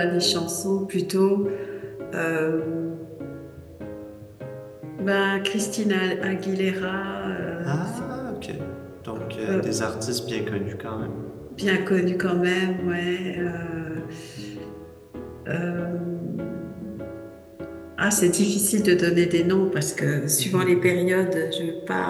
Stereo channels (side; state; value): both; identical; correlation 1.00